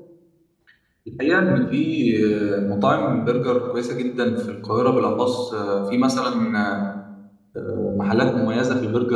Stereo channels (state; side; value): identical; both; correlation 1.00